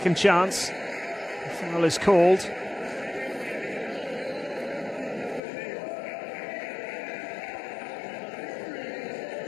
chance. The foul is called.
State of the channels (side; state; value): right; drops out; at 5.4 s